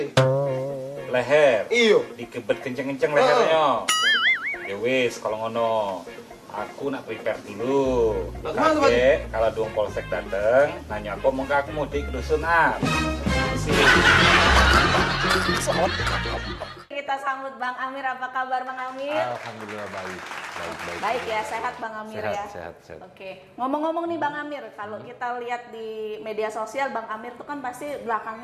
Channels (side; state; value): both; identical; correlation 1.00